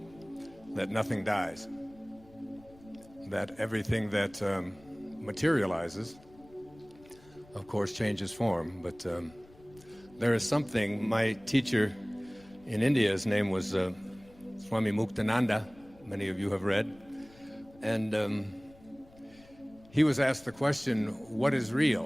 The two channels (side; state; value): left; noise; rumble, 25 dB below the sound